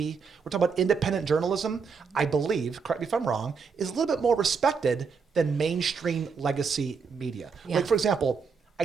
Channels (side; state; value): left; quieter; 5.5 dB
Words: We're talking about independent journalism, I believe, correct me if I'm wrong, is a little bit more respected than mainstream legacy media. Yeah. Like, for example, I